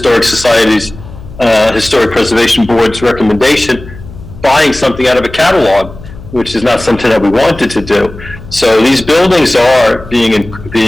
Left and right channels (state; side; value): noise; left; hum, 16 dB below the sound